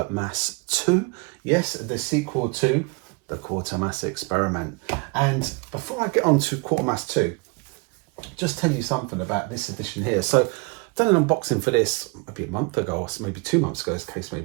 2. Yes, the sequel to the Quatermass Experiment. And before I get on to Quatermass 2, just tell you something about this edition here. So I've done an unboxing for this maybe a month ago, or maybe 2 months ago, as the case may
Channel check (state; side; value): quieter; left; 30.5 dB